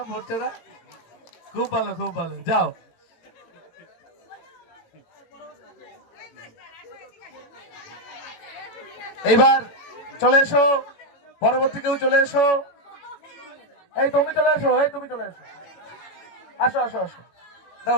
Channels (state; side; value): late; right; 18 ms